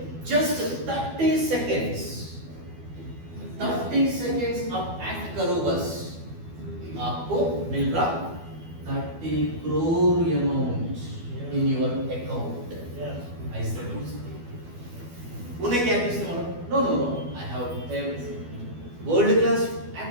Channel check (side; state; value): left; late; 12 ms